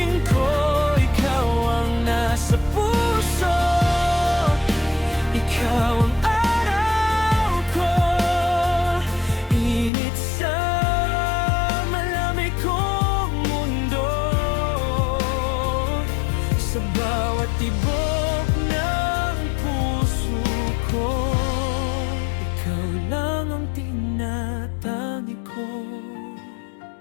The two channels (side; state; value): right; drops out; at 9.9 s